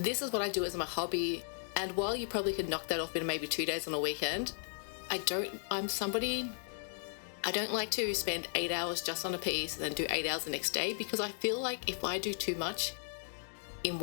is what I do as my hobby. And while you probably could knock that off in maybe 2 days on a weekend, I don't like to spend 8 hours just on a piece and then do 8 hours the next day, because I feel like if I do too much in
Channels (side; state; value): right; silent; digital silence